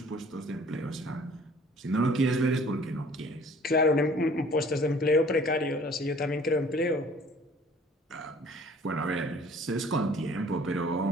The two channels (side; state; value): both; normal; correlation 0.52